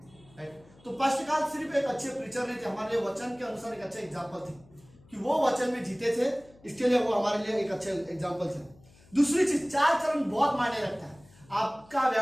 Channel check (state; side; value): noise; left; hum, 26 dB below the sound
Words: राइट। तो पास्टरकाल सिर्फ एक अच्छे प्रीचर नहीं थे, हमारे लिए वचन के अनुसार एक अच्छा एग्जाम्पल थे कि वो वचन में जीते थे, इसके लिए वो हमारे लिए एक अच्छे एग्जाम्पल थे। दूसरी चीज, 4 चरण बहुत मायने रखता है। आपका